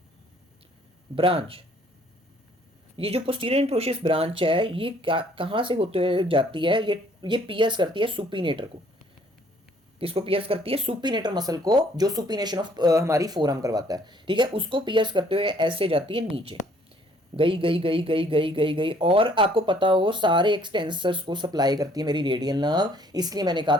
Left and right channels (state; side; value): normal; both; correlation 0.61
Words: ब्रांच। ये जो पोस्टीरियर इंट्रोशियस ब्रांच है ये कहां से होते हुए जाती है, ये पियर्स करती है सुपीनेटर को, किसको पियर्स करती है, सुपीनेटर मसल को, जो सुपीनेशन ऑफ हमारी फोरआर्म करवाता है, ठीक है, उसको पियर्स करते हुए ऐसे जाती है नीचे, गई गई गई गई गई गई गई, और आपको पता हो सारे एक्सटेंसर्स को सप्लाई करती है मेरी रेडियल नर्व, इसलिए मैंने कहा